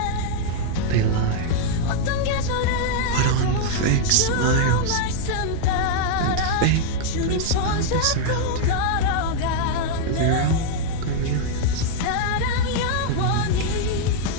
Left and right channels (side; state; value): both; different; correlation 0.00